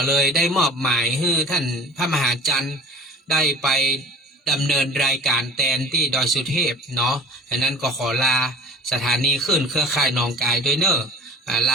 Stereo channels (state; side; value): normal; both; correlation 0.45